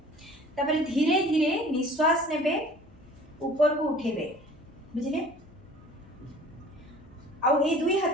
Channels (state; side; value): noise; left; hum, 27 dB below the sound